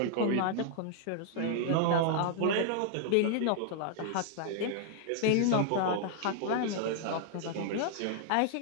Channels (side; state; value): both; different; correlation 0.00